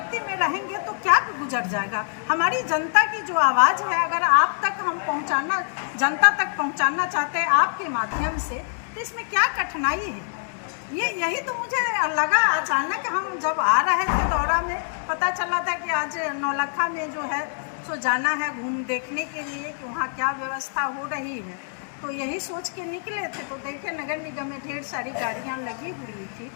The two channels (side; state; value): right; silent; 62 dB below the other